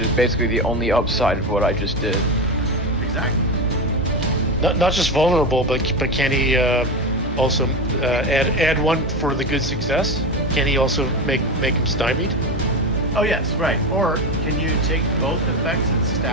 basically the only upside of what I just did. exactly. Not just vulnerable, but can he also add 1 for the good success? Can he also make him stymied? Oh yes, right. Or can you take both effects and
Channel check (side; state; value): both; normal; correlation 0.19